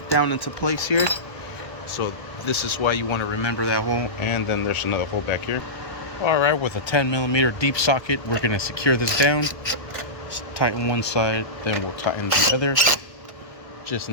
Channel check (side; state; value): right; late; 1.3 ms